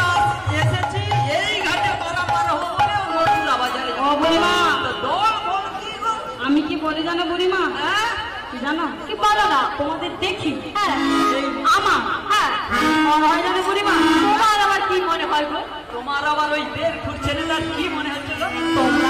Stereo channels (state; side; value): identical; both; correlation 1.00